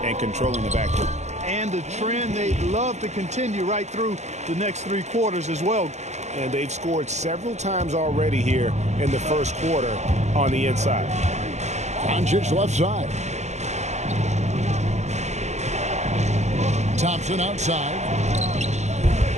controlling the backcourt. And a trend they'd love to continue right through the next 3 quarters as well. And they've scored several times already here in the first quarter on the inside. Doncic left side. Thompson outside.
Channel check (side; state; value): left; late; 0.33 ms